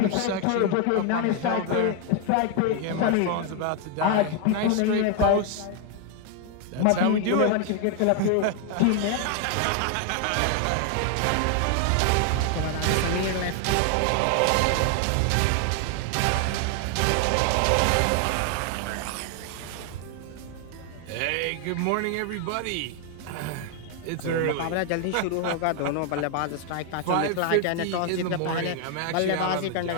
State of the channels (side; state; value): both; different; correlation 0.00